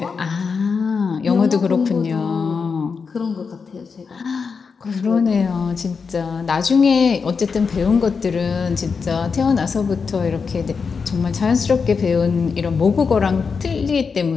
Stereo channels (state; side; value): quieter; right; 5.4 dB